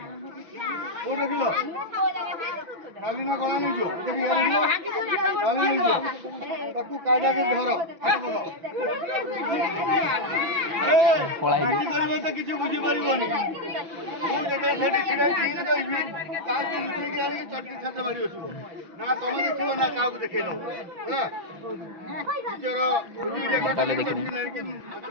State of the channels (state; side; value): late; left; 6.0 ms